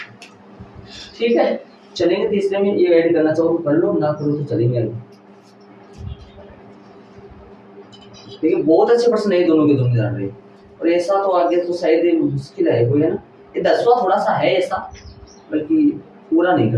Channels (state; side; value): identical; both; correlation 1.00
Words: ठीक है, चलेंगे तीसरे में। ये ऐड करना चाहो तो कर लो, ना करो तो चलेंगे आगे। देखिए बहुत अच्छे प्रश्न है दोनों के दोनों जान रहे। और ऐसा तो आगे तो शायद मुश्किल है कोई, है ना। ये 10वां थोड़ा सा है ऐसा, बल्कि पूरा नहीं